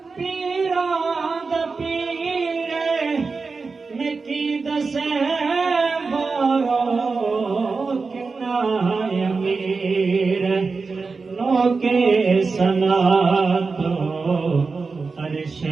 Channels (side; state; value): left; quieter; 4.4 dB